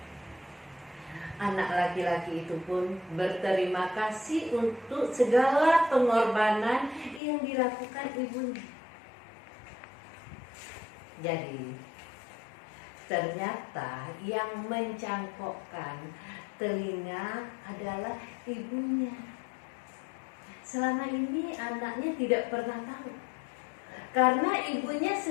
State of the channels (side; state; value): right; drops out; at 7.2 s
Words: Anak laki-laki itu pun berterima kasih untuk segala pengorbanan yang dilakukan ibunya. Jadi, ternyata yang mencangkokkan telinga adalah ibunya. Selama ini anaknya tidak pernah tahu, karena ibunya